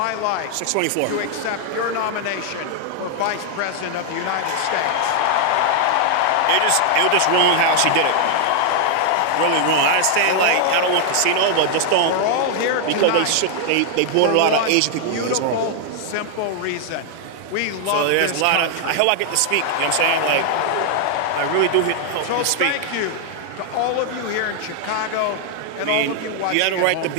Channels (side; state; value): both; different; correlation 0.00